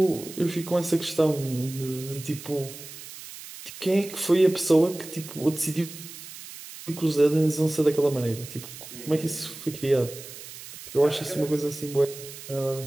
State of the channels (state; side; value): noise; right; hiss, 14 dB below the sound